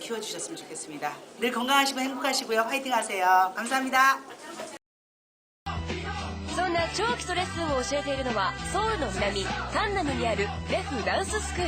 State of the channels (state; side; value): identical; both; correlation 1.00